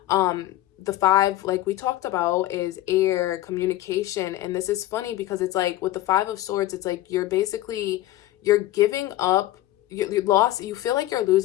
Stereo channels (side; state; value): right; quieter; 15.3 dB